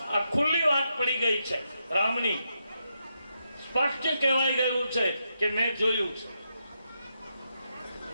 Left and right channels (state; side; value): inverted; both; correlation -0.83